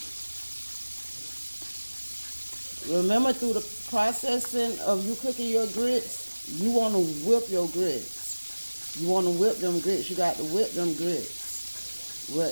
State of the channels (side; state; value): both; inverted; correlation -1.00